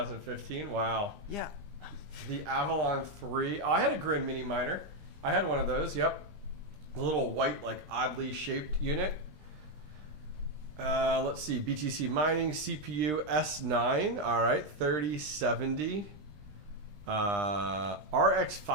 Wow. Yeah. The Avalon 3. Oh, I had a Grin Mini Miner. I had one of those. Yep. A little white, like oddly shaped unit. Let's see. BTC Mining CPU S9. All right, 3070. RX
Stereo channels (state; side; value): late; left; 20 ms